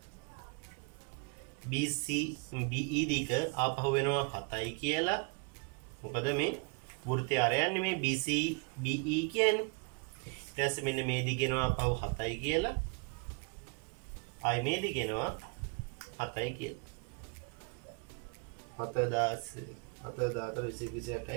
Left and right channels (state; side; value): quieter; left; 33.3 dB